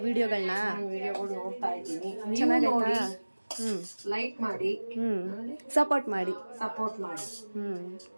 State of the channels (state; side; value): inverted; both; correlation -1.00